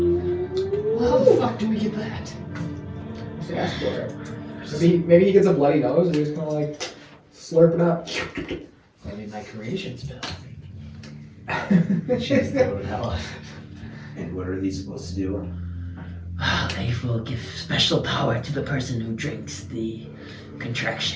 Well, how the fuck do we get that? Just ask for it. Maybe he gets a bloody nose and he's kind of like slurp it up. Maybe my creation spell. Jeez, that would help. And what are these supposed to do? They will give special power to the person who drinks the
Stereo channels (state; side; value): identical; both; correlation 1.00